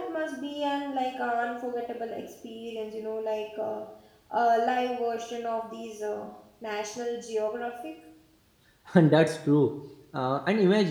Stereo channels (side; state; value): both; identical; correlation 1.00